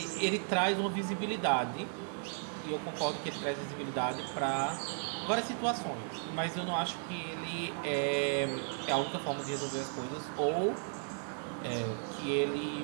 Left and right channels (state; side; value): silent; left; 54 dB below the other